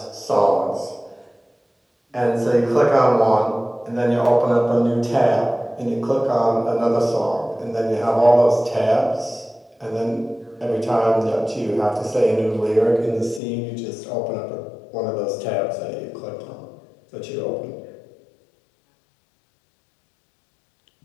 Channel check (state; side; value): drops out; right; at 13.4 s